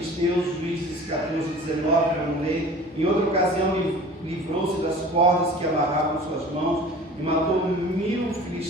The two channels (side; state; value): both; normal; correlation 0.42